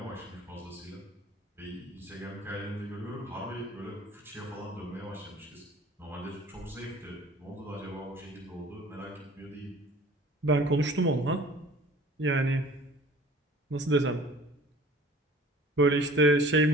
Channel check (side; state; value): both; normal; correlation 0.47